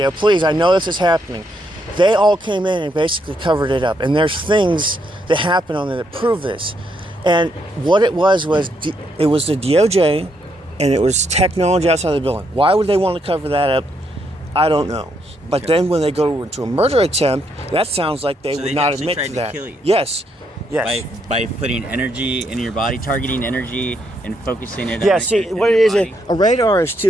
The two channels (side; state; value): both; normal; correlation 0.76